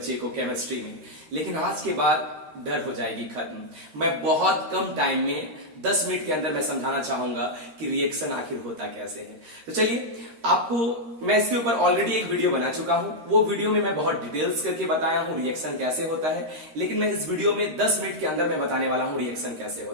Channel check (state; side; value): late; left; 13 ms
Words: को केमिस्ट्री में, लेकिन आज के बाद डर हो जाएगी खत्म। मैं बहुत कम टाइम में 10 मिनट के अंदर मैं समझाना चाहूंगा कि रिएक्शन आखिर होता कैसे है। तो चलिए, आपको मैं इसके ऊपर ऑलरेडी एक वीडियो बना चुका हूं। वो वीडियो में मैं बहुत डिटेल्स करके बताया हूं रिएक्शन कैसे होता है, लेकिन मैं इस वीडियो में 10 मिनट के अंदर मैं बताने वाला हूं रिएक्शन कैसे